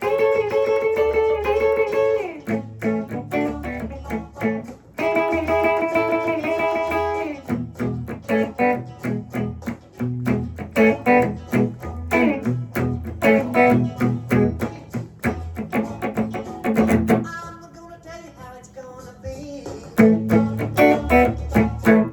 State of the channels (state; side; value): identical; both; correlation 1.00